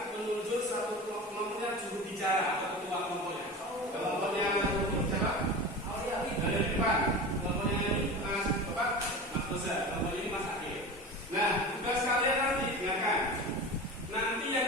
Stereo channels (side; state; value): both; normal; correlation 0.31